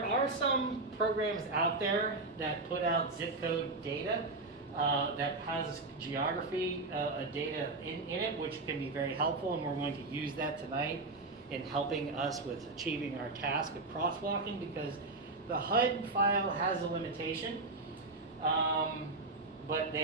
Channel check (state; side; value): quieter; left; 3.3 dB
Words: are some programs out there that put out zip code data that has geography data in it, which can be very helpful, and we're going to use that tonight in helping us with achieving our task of crosswalking, because the HUD file has a limitation, but